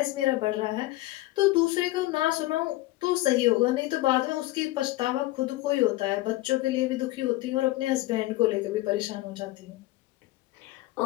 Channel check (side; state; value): right; quieter; 18.1 dB